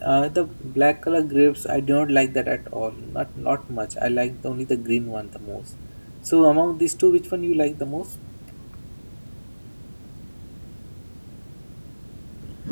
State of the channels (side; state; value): both; inverted; correlation -1.00